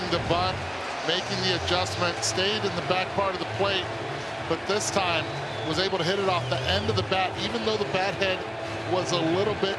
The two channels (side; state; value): both; identical; correlation 1.00